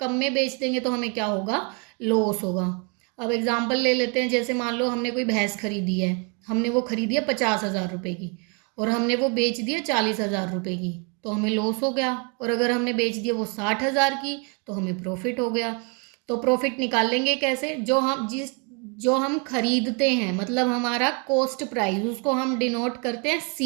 में बेच देंगे तो हमें क्या होगा, लॉस होगा। अब एग्जांपल ले लेते हैं, जैसे मान लो हमने कोई भैंस खरीदी है, हमने वो खरीदी है 50,000 रुपये की और हमने वो बेच दिया 40,000 रुपये की, तो हमें लॉस हो गया। और अगर हमने बेच दिया वो 60,000 की तो हमें प्रॉफिट हो गया। तो प्रॉफिट निकाल लेंगे कैसे, जो हम खरीदते हैं, मतलब हमारा कॉस्ट प्राइस, उसको हम डिनोट करते हैं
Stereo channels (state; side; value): quieter; left; 32.9 dB